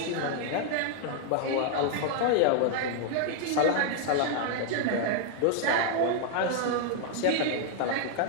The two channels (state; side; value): different; both; correlation 0.00